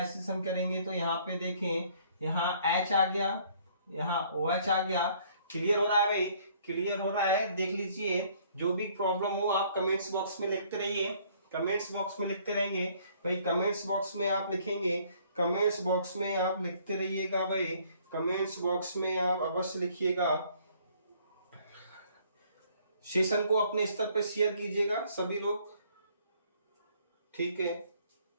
हम करेंगे तो यहाँ पे देखें, यहाँ H आ गया, यहाँ OH आ गया। क्लियर हो रहा है भाई, क्लियर हो रहा है। देख लीजिए, जो भी प्रॉब्लम हो आप कमेंट्स बॉक्स में लिखते रहिए, कमेंट्स बॉक्स में लिखते रहेंगे भाई। कमेंट्स बॉक्स में आप लिखेंगे, कमेंट्स बॉक्स में आप लिखते रहिएगा भाई, कमेंट्स बॉक्स में आप अवश्य लिखिएगा। सेशन को अपने स्तर पे शेयर कीजिएगा सभी लोग। ठीक है,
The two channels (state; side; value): inverted; both; correlation -0.61